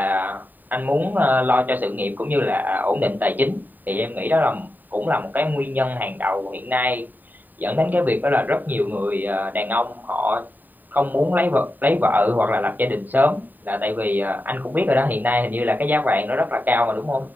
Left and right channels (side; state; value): left; late; 0.088 ms